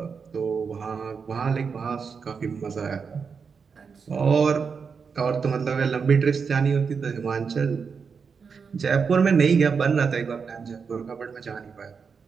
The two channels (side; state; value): left; quieter; 5.7 dB